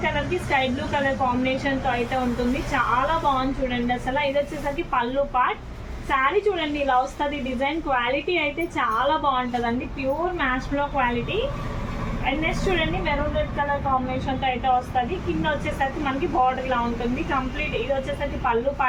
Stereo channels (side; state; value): both; identical; correlation 1.00